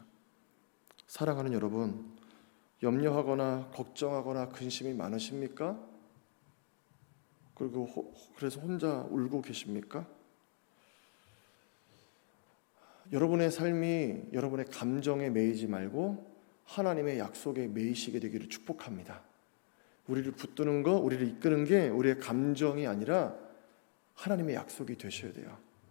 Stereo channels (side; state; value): right; silent; 52 dB below the other